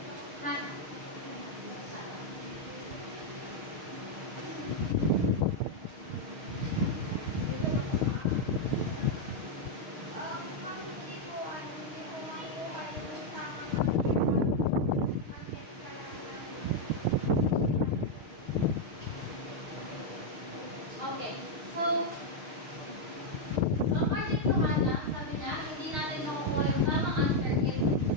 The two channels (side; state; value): left; late; 6.5 ms